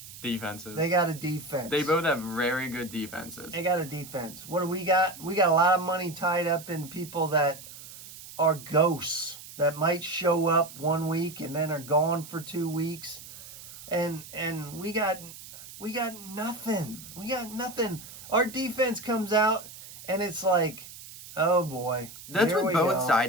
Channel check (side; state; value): right; noise; hiss, 15 dB below the sound